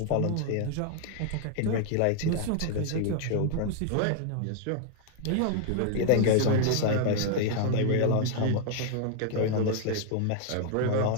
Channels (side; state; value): both; different; correlation 0.00